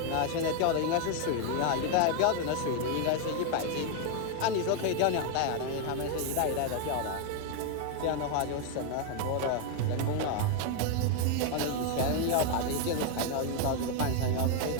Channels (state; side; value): different; both; correlation 0.00